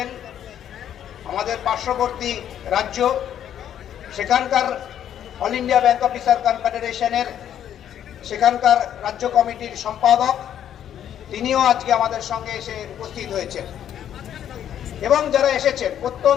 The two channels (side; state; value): right; quieter; 10.1 dB